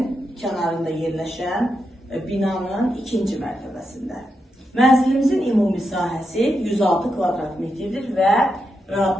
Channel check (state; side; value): normal; both; correlation 0.85